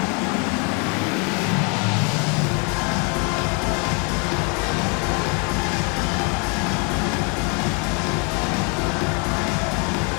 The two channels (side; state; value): right; quieter; 34.7 dB